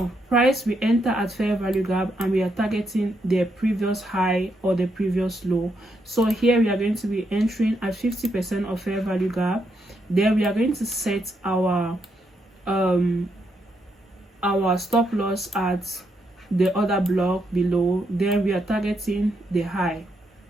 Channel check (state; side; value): normal; both; correlation 0.79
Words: price, we enter at fair value gap and we are targeting the previous high or the previous low. So here we are going to be entering at 50% of fair value gap. Then we are going to set our stop loss at the other block below. Then we are targeting the high.